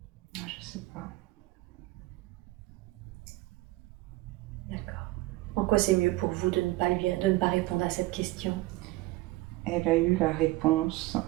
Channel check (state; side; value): quieter; left; 19.4 dB